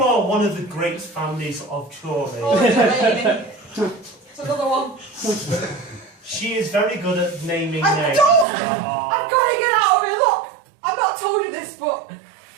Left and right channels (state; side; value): drops out; left; at 8.5 s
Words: one of the great families of Chorley, Oh, Delaney. It's another one. she is very good at naming I names. don't. I've got to get out of here. Look, I've not told you this, but